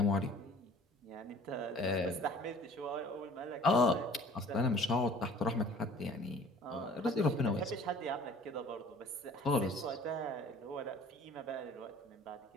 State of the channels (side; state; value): both; normal; correlation 0.50